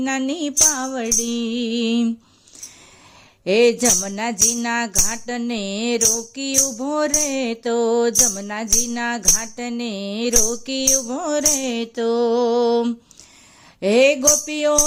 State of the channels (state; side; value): identical; both; correlation 1.00